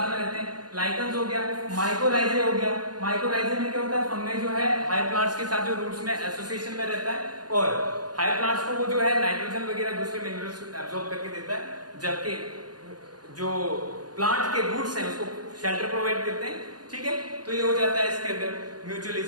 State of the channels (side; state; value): left; late; 0.69 ms